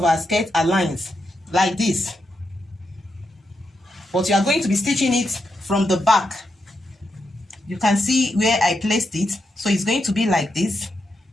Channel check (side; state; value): both; normal; correlation 0.84